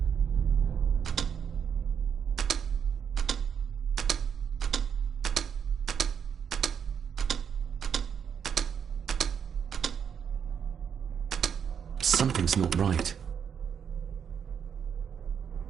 Something's not right.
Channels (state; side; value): quieter; left; 7.5 dB